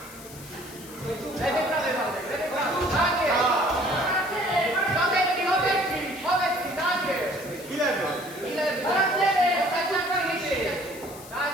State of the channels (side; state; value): left; noise; hiss, 17 dB below the sound